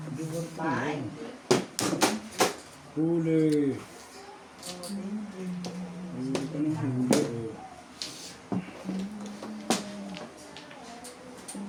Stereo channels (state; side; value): identical; both; correlation 1.00